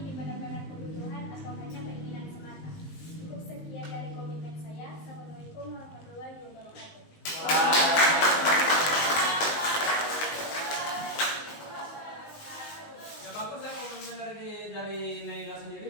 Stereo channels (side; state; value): right; late; 19 ms